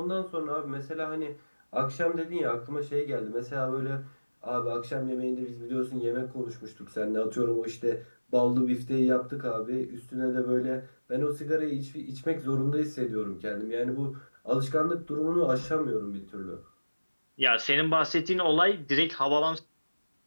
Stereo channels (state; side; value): inverted; both; correlation -1.00